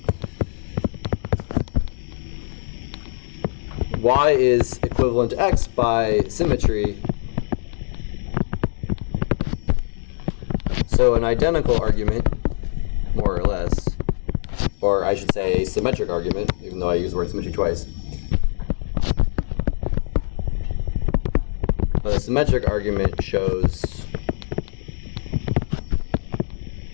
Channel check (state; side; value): silent; right; digital silence